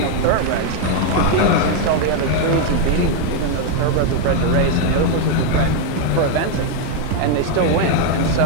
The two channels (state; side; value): different; both; correlation 0.01